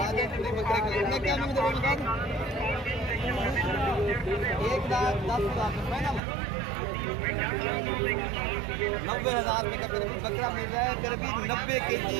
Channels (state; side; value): drops out; left; at 6.2 s